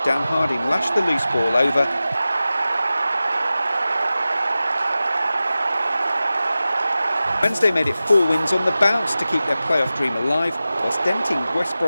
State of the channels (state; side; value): inverted; both; correlation -0.95